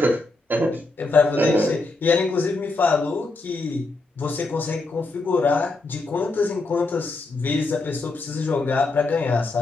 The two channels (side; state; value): right; quieter; 3.2 dB